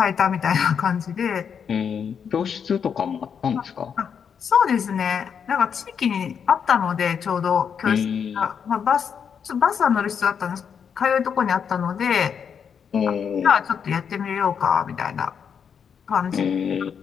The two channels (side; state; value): right; quieter; 7.2 dB